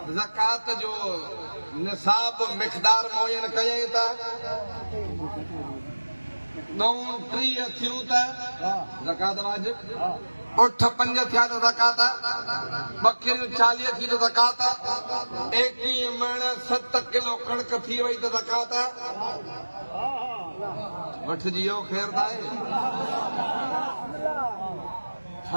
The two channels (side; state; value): both; inverted; correlation -1.00